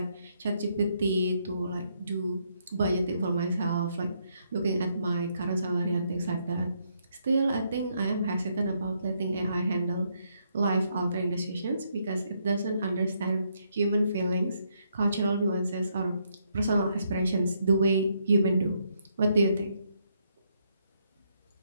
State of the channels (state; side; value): inverted; both; correlation -0.75